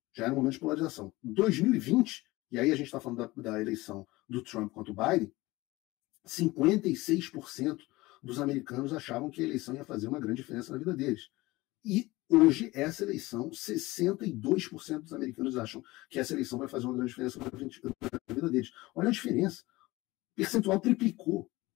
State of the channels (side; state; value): right; quieter; 20.2 dB